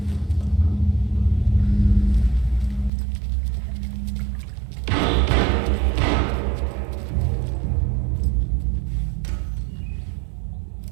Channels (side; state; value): left; drops out; at 2.9 s